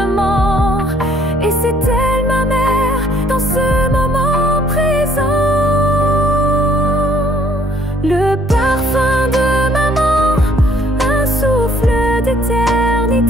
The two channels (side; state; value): both; normal; correlation 0.62